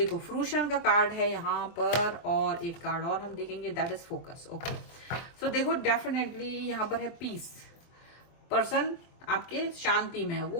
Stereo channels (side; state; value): right; late; 24 ms